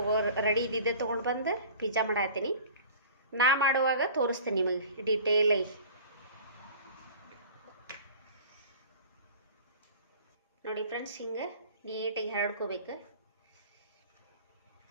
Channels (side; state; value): both; inverted; correlation -0.43